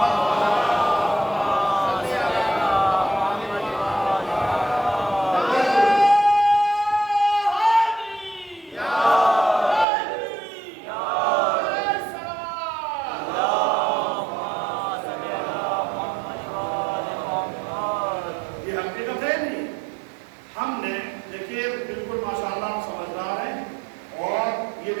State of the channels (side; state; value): left; drops out; at 9.9 s